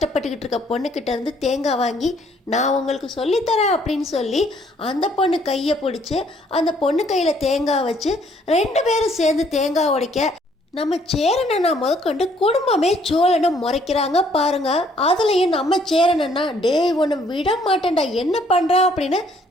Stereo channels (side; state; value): both; normal; correlation 0.64